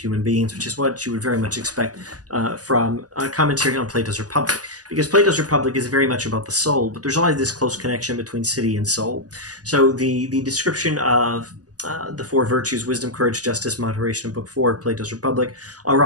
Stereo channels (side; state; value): left; late; 0.67 ms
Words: beings, which is what you would very much expect from a commentary on Plato's Republic, because Plato's Republic is very much about the soul, but there's always this close connection between city and soul. So the description of the 4 virtues, wisdom, courage, justice, moderation, in Book 4 of Plato's Republic, are